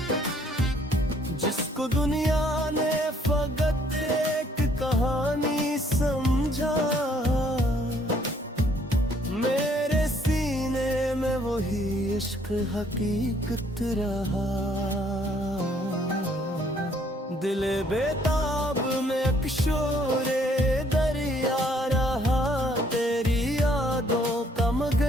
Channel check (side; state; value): both; normal; correlation 0.64